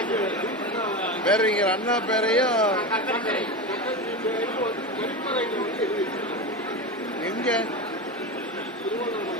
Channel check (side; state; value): both; normal; correlation 0.20